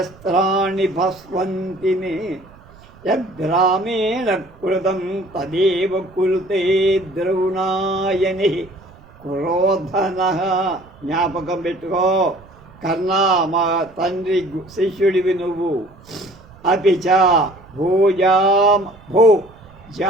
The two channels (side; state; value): right; noise; rumble, 25 dB below the sound